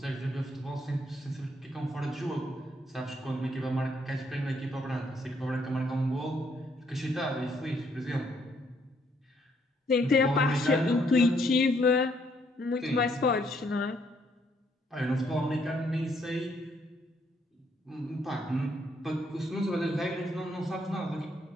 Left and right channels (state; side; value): normal; both; correlation 0.71